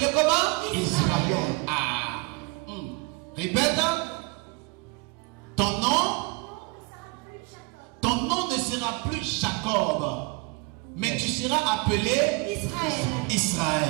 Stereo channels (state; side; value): quieter; left; 27.5 dB